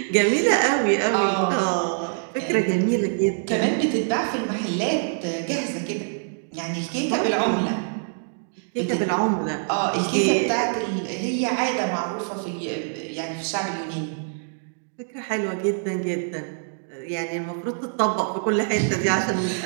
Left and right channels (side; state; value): left; silent; digital silence